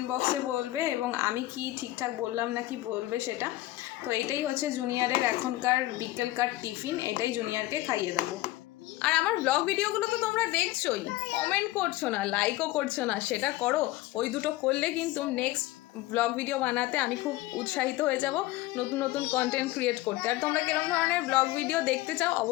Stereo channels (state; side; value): quieter; right; 17.4 dB